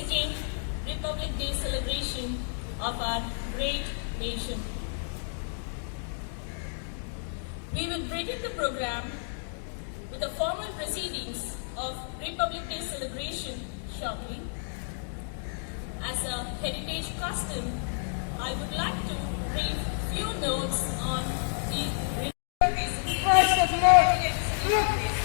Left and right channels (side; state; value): right; silent; digital silence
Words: Republic Day celebration of our great nation. We will begin the program with the formal proceedings of Republic Day celebration shortly. As a heritage custom, I would like to read few notes on the